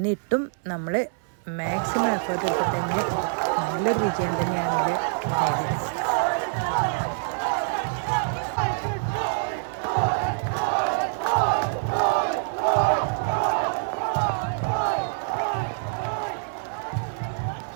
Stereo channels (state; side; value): silent; left; digital silence